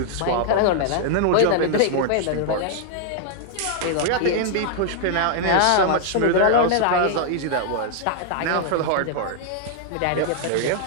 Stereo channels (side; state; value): both; different; correlation -0.01